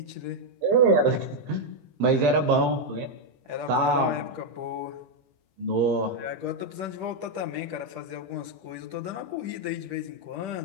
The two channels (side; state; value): left; late; 15 ms